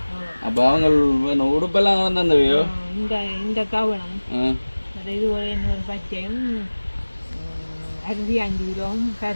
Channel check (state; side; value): inverted; both; correlation -1.00